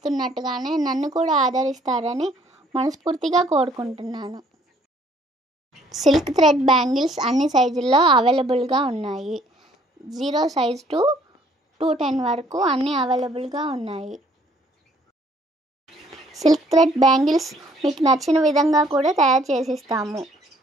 నన్ను కూడా ఆదరిస్తారని మనస్ఫూర్తిగా కోరుకుంటున్నాను. సిల్క్ థ్రెడ్ బ్యాంగిల్స్ అన్ని సైజుల్లో అవైలబుల్గా ఉన్నాయి. 0 సైజ్ టు 210 వరకు అన్నీ అవైలబుల్గా ఉన్నాయి. సిల్క్ థ్రెడ్ బ్యాంగిల్స్ మీకు నచ్చిన విధంగా కూడా తయారు చేసిస్తాము.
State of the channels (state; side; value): normal; both; correlation 0.61